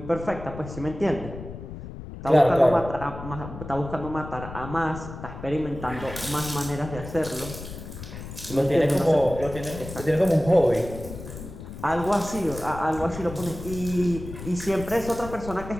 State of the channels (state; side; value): noise; left; rumble, 11 dB below the sound